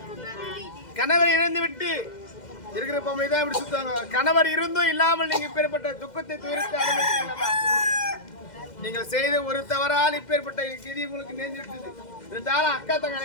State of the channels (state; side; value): late; right; 2.1 ms